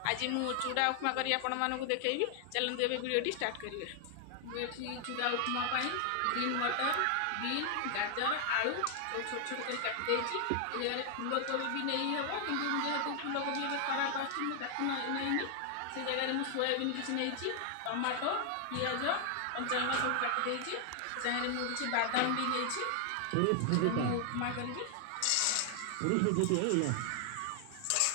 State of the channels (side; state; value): both; different; correlation 0.00